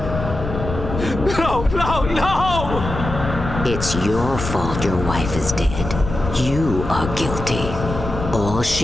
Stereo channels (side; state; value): left; noise; rumble, 6 dB below the sound